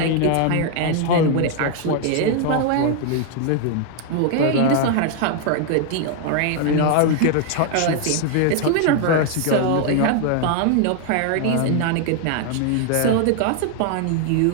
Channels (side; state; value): both; different; correlation 0.00